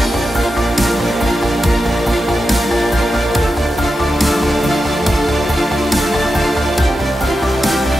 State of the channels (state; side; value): normal; both; correlation 0.89